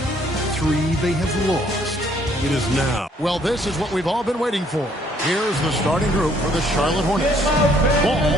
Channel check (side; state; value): both; normal; correlation 0.64